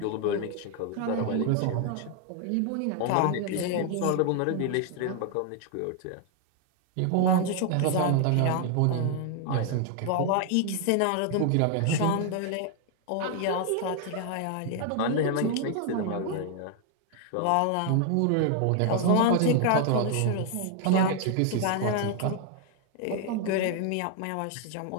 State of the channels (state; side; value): different; both; correlation 0.00